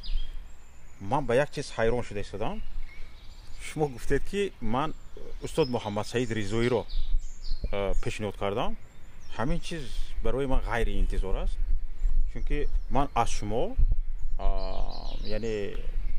من به یک چیز حیران شده ایستادم. شما گفتید که من استاد محمد سعید رضایی رو پیشنهاد کردم. همین چیز برای من غیر انتظار است، چون که من از شما یعنی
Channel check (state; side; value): identical; both; correlation 1.00